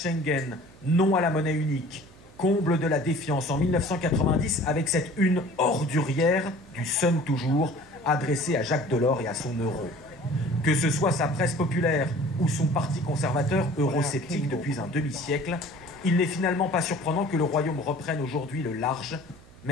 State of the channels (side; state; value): right; noise; hum, 25 dB below the sound